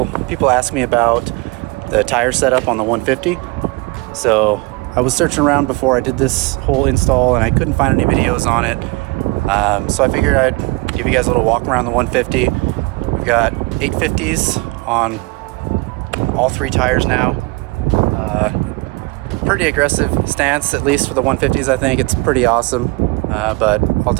people ask me about the tire setup on the 150. So I was searching around before I did this whole install and I couldn't find any videos on it. So I figured I'd give you guys a little walk around the 150. We've got 850s on all three tires now. Pretty aggressive stance, at least for the 150s. I think it's pretty awesome. But I'll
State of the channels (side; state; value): left; quieter; 24.9 dB